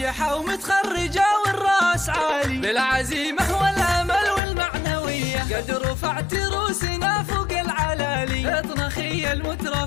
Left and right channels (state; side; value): drops out; right; at 4.4 s